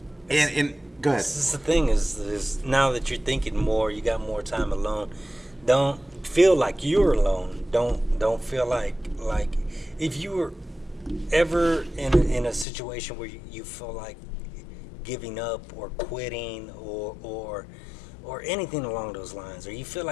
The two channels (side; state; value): right; drops out; at 12.7 s